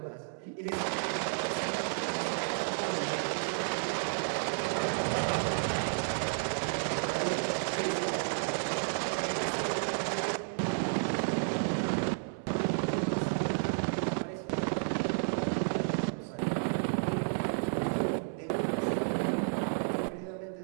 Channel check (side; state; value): left; silent; digital silence